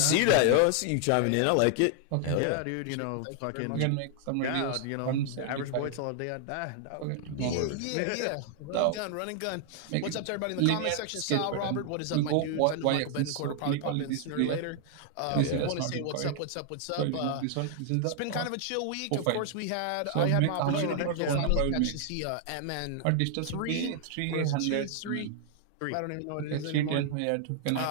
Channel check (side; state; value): both; different; correlation 0.00